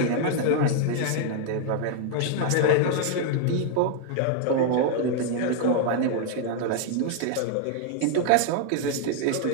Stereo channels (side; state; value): both; different; correlation 0.00